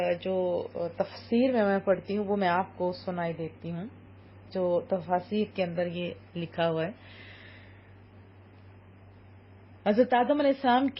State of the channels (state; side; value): identical; both; correlation 1.00